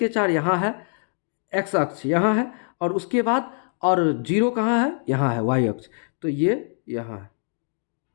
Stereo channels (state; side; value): silent; right; 58 dB below the other